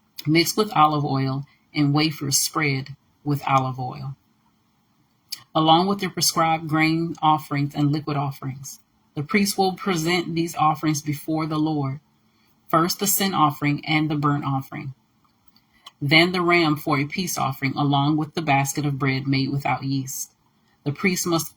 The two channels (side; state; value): both; identical; correlation 1.00